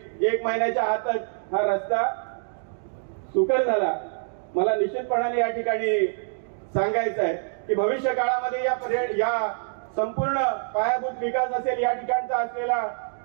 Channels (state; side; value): silent; left; digital silence